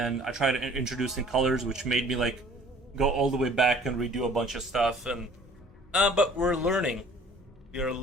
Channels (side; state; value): both; normal; correlation 0.51